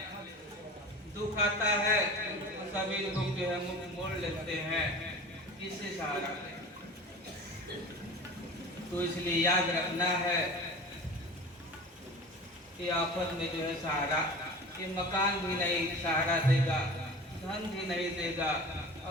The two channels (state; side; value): normal; both; correlation 0.37